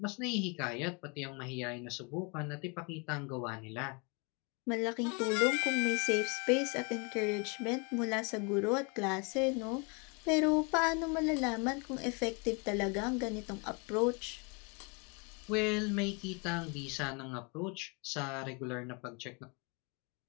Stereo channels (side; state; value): right; quieter; 32.3 dB